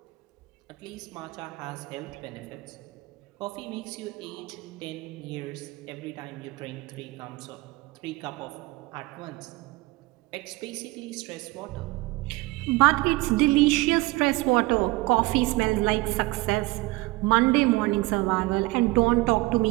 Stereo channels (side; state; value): left; quieter; 21.8 dB